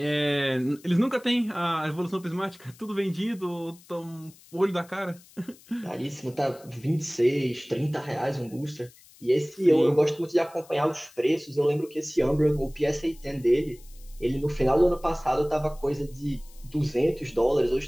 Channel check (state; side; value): noise; left; hiss, 25 dB below the sound